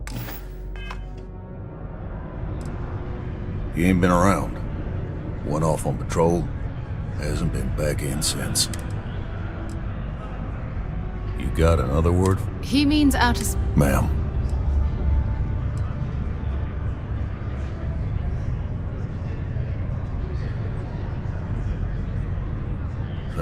He ain't been around. Went off on patrol. Hasn't been back in since. You got another word? He means out of... Ma'am.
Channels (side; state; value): both; identical; correlation 1.00